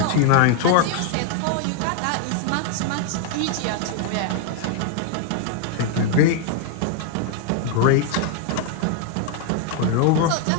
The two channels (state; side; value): different; both; correlation 0.00